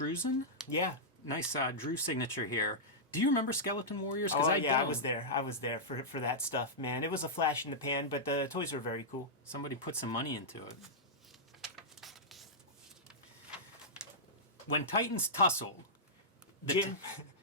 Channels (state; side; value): normal; both; correlation -0.11